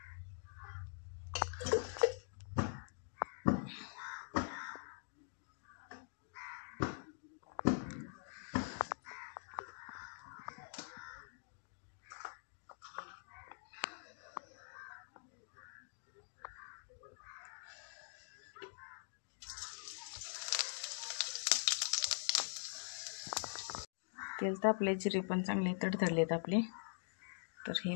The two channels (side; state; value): right; silent; digital silence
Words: तेल तापले, जिरे पण चांगले तडतडलेत आपले. तर हे